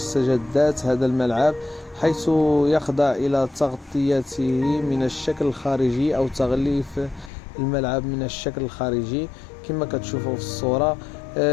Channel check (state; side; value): drops out; right; at 7.3 s